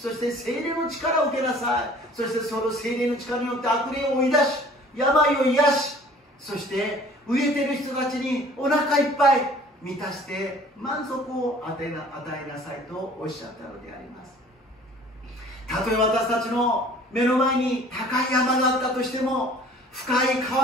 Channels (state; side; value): normal; both; correlation 0.51